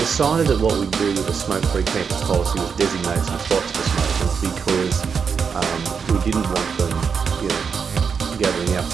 that what we'd do with a smoke-free campus policy was designate some spots for smokers because we didn't want them, gathering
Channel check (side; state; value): left; quieter; 6.2 dB